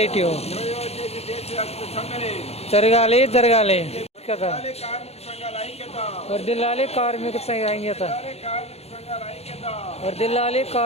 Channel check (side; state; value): right; late; 0.30 ms